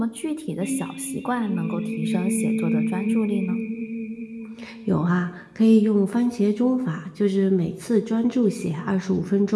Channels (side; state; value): both; identical; correlation 1.00